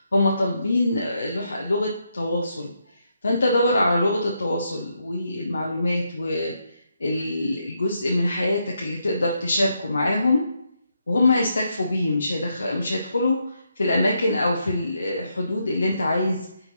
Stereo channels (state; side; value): inverted; both; correlation -0.79